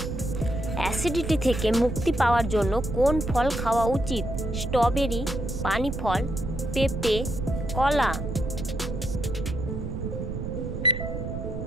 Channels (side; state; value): right; noise; rumble, 5 dB below the sound